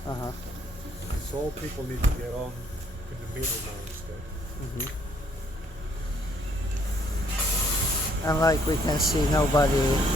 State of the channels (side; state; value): both; normal; correlation 0.67